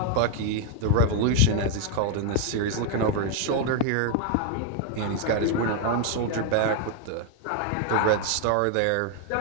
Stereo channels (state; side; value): different; both; correlation 0.01